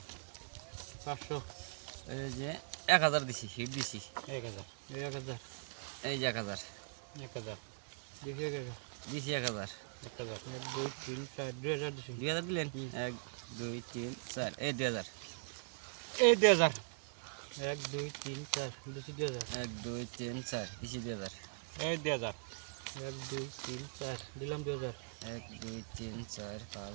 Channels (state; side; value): silent; left; digital silence